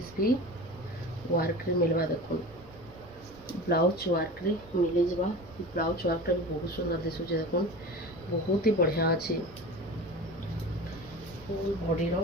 भी वर्क रे मिलवा देखुन ब्लाउज वर्क रे मिल जावा ब्लाउज वर्क टा भी बहुत सुंदर दिसुचे देखुन बहुत ही बढ़िया अच्छी फुल बॉडी रो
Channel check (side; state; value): both; normal; correlation 0.34